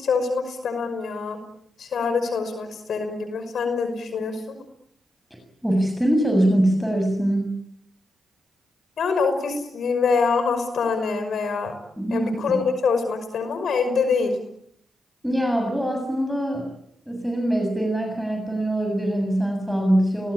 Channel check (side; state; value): both; normal; correlation 0.86